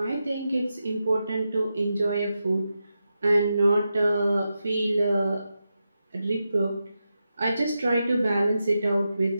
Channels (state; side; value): inverted; both; correlation -0.89